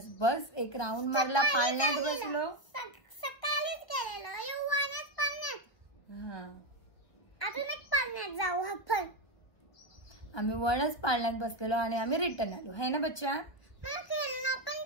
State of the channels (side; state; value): right; late; 1.5 ms